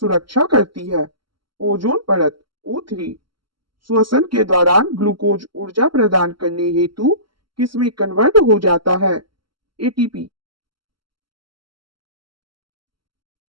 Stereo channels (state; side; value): late; left; 0.73 ms